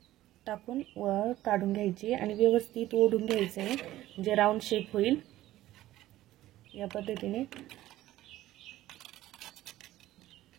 टाकून वर काढून घ्यायची आणि व्यवस्थित ओढून घ्यायचं आहे, म्हणजे राऊंड शेप होईल या पद्धतीने।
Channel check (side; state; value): left; quieter; 15.0 dB